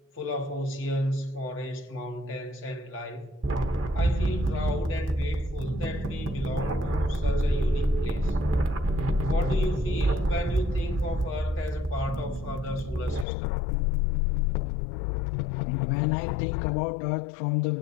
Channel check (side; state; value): right; drops out; at 13.2 s